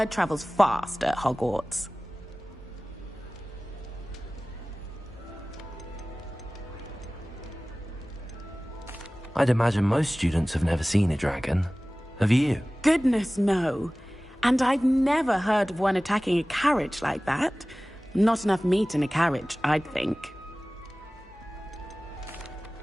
travels fast at Hogwarts. I'd imagine most students have never seen a dragon. Have you? Goodness, no. And I've never heard of one attacking a carriage like that. Not enough meat in a carriage, I'd think.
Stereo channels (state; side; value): normal; both; correlation 0.98